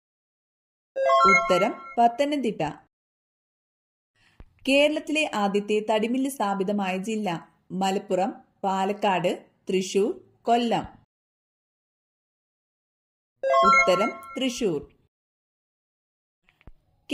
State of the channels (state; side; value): identical; both; correlation 1.00